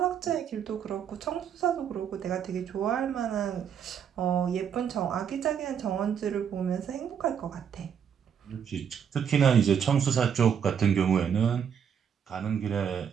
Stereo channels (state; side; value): quieter; left; 7.9 dB